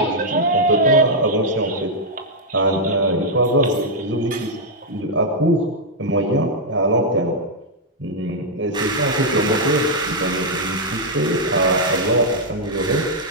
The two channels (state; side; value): normal; both; correlation -0.04